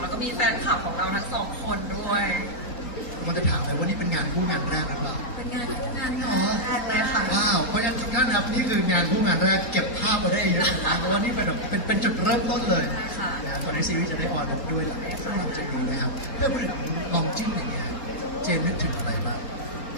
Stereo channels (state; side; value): late; right; 3.9 ms